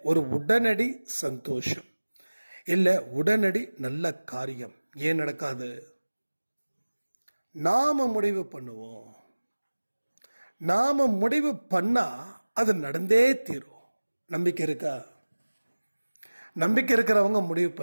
ஒரு உடனடி சந்தோஷம் இல்லை, உடனடி நல்ல காரியம் ஏன் நடக்காது? நாம முடிவு பண்ணுவோம். நாம முடிவு பண்ணா அது நடந்தே தீரும். நம்பிக்கை இருக்கா? நம்பிக்கை இருக்கிறவங்க முடிவு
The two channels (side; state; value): both; inverted; correlation -1.00